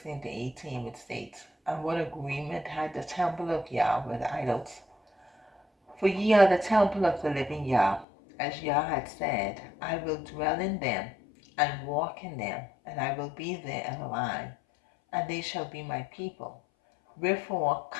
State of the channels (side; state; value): right; drops out; at 8.1 s